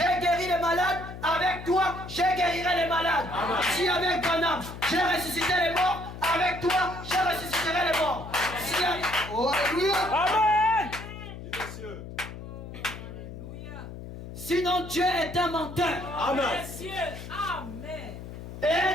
guéri les malades, avec toi, je guérirai les malades. Amen. Si avec Branham, j'ai ressuscité les morts, avec toi, je ressusciterai les morts. Si avec... Oh, alléluia. Amen. Oui, monsieur. Alléluia. Sinon, Dieu est un menteur. Amen. Messieurs, Amen.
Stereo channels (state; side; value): noise; left; hum, 11 dB below the sound